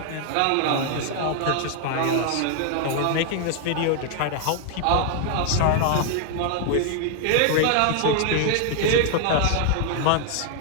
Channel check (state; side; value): different; both; correlation 0.00